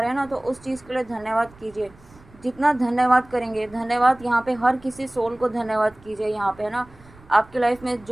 हैं ना, तो उस चीज़ के लिए धन्यवाद कीजिए। जितना धन्यवाद करेंगे, धन्यवाद यहाँ पे हर किसी सोल को धन्यवाद कीजिए। यहाँ पे है ना, आपकी लाइफ में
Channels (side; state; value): right; noise; rumble, 25 dB below the sound